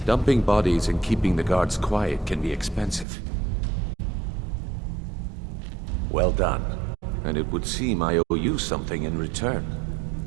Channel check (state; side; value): drops out; left; at 3.1 s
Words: Dumping bodies and keeping the guards quiet can be expensive. Well done. And it would seem I owe you something in return.